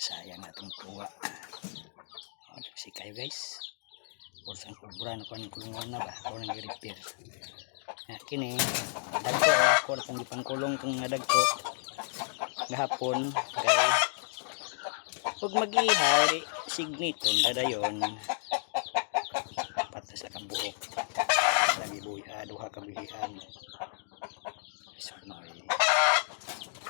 atong tuwa. Si kayo guys. Kurang kubran ko ng kulungan na ba? Ako nang i-repair. Kini dagko ako na kung ipangkulong kung nadagko gahapon kay pag mag-ihari signiton dadayon patas sa kabuok lagi buhi duha ka bilihan sunoy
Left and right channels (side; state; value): right; silent; digital silence